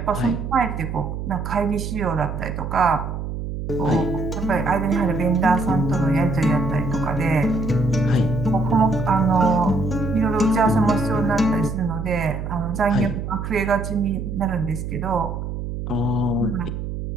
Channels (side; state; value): right; noise; hum, 5 dB below the sound